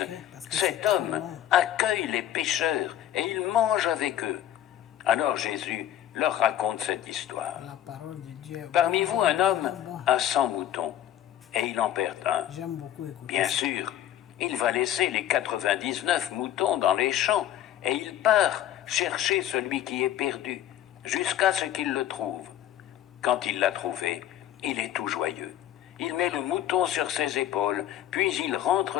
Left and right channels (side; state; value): right; quieter; 11.7 dB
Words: « Cet homme accueille les pécheurs et il mange avec eux. » Alors Jésus leur raconte cette histoire. Parmi vous, un homme a 100 moutons et il en perd un. Bien sûr, il va laisser les 99 moutons dans les champs et il part chercher celui qui est perdu jusqu'à ce qu'il le trouve. Quand il l'a trouvé, il est tout joyeux. Il met le mouton sur ses épaules, puis il